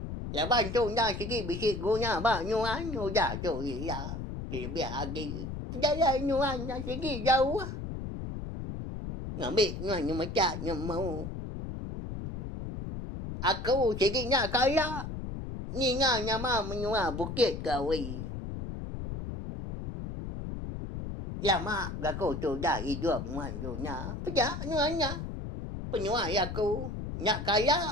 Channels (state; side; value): noise; left; rumble, 6 dB below the sound